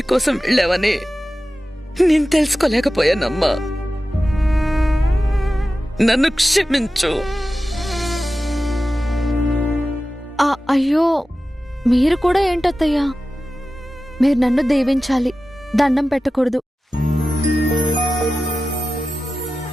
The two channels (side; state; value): both; normal; correlation 0.94